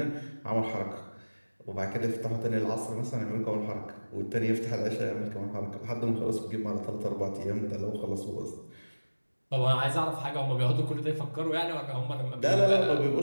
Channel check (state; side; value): inverted; both; correlation -1.00